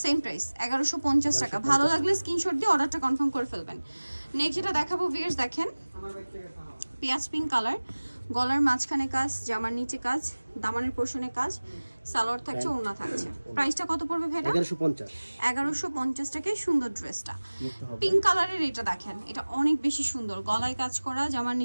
সেম প্রাইস 1150 টাকা। ভালো লাগলে স্ক্রিনশট দিয়ে অর্ডারটা কনফার্ম করে ফেলবেন। নেক্সট যেটা দেখাবো ভিউয়ার্স, দেখেন পেঁয়াজ পিঙ্ক কালার, গলার মাঝখানে কাজ, জামার নিচে কাজ, দামানের পোর্শনে কাজ, সালোয়ার থাকছে, ওড়না থাকছে। প্রাইসটা কত পড়বে ভাইটা? 1150। 1150 টাকায় সুন্দর ড্রেসটা। পিঙ্ক কালারের এটা দেখেন, এটা অনেক বেশি সুন্দর, গলায় কাজ করা, জামার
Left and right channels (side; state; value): both; inverted; correlation -1.00